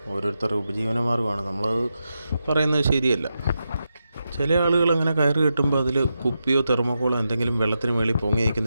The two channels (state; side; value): inverted; both; correlation -0.88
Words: ഓരോരുത്തരുടെ ഉപജീവനമാർഗ്ഗമാണ്. നമ്മളത് പറയുന്നത് ശരിയല്ല. ചില ആളുകൾ അങ്ങനെ കയറ് കെട്ടുമ്പോൾ അതിൽ കുപ്പിയോ തെർമോക്കോളോ എന്തെങ്കിലും വെള്ളത്തിന് മേളിൽ പൊങ്ങി